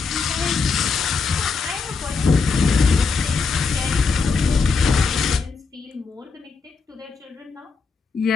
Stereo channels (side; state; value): right; quieter; 4.8 dB